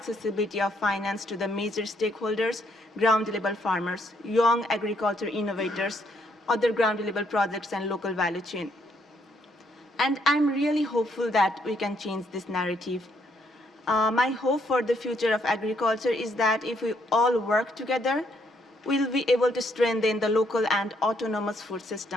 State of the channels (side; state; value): both; normal; correlation 0.72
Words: of finance to the major stakeholders, ground-level farmers, young agriculture innovators, other ground-level projects, and local value chain. And I'm really hopeful that we can change this narrative. My hope for the future of agriculture is that if we all work together, we'll be able to strengthen the local and autonomous food